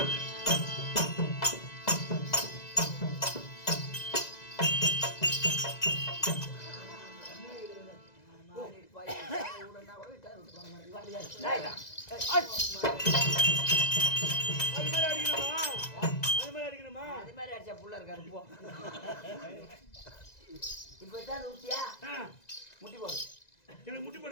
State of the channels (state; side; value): late; right; 2.0 ms